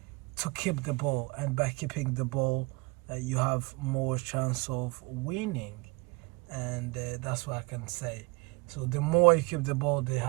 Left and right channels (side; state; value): left; quieter; 25.8 dB